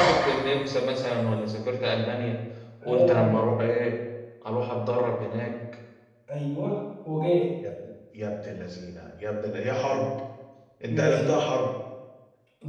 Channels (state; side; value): identical; both; correlation 1.00